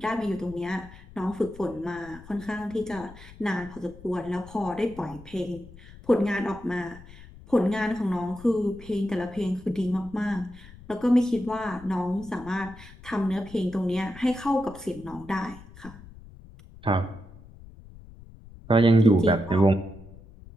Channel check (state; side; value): noise; left; rumble, 19 dB below the sound